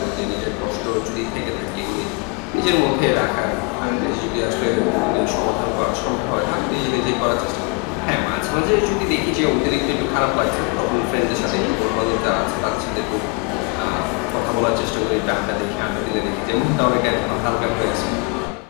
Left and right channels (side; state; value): right; quieter; 31.5 dB